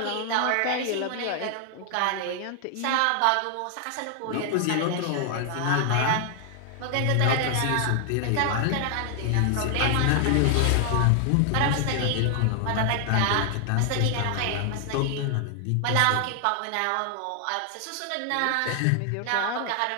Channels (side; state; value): both; different; correlation 0.00